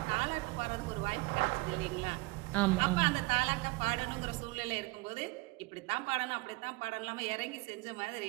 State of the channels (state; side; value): quieter; left; 24.2 dB